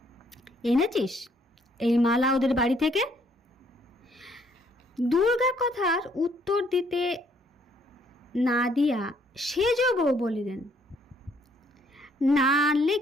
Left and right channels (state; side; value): normal; both; correlation 0.66